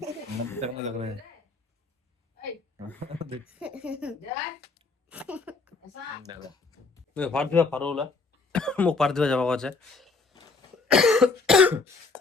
रहा है फाड़ दिया फाड़ोला मुख फाड़ दिया जब आवाज है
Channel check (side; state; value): right; quieter; 4.0 dB